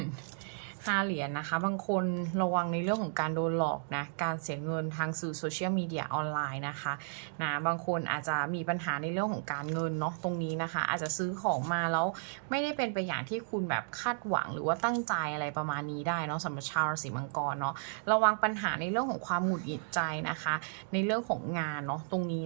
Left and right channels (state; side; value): silent; left; digital silence